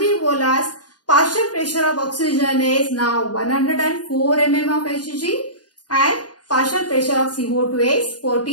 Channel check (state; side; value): late; right; 0.69 ms